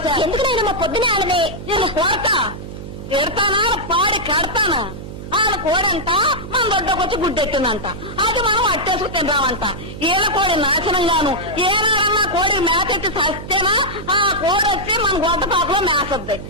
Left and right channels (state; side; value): noise; right; hum, 11 dB below the sound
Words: ఎందుకు నేను మా పొద్దున ఆడమే నేను కొడతా ఎడతానా పాడి కడతానా? ఆయన కోడంట మన దొడ్డకొచ్చి గుడ్డెట్టిందంట, అది మనం అట్టేసుకు తిందామంట. ఈల కోడి నాశనంగాను ఏనాడన్నా కోడి మేకెట్టి సస్తేనా ఆ కోడెచ్చి మన గొడ్డపాకులో మేసద్ది.